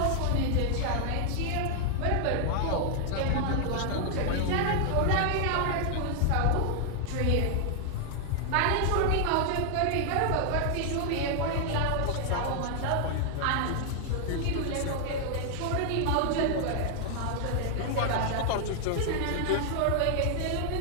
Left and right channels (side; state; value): both; different; correlation 0.00